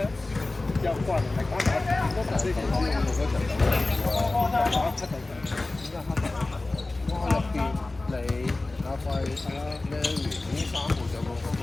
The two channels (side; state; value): right; quieter; 3.1 dB